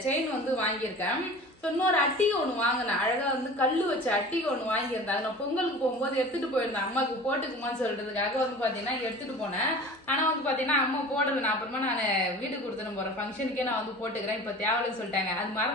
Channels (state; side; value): normal; both; correlation 0.39